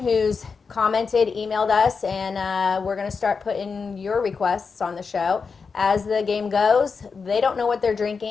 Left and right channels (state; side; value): quieter; right; 5.2 dB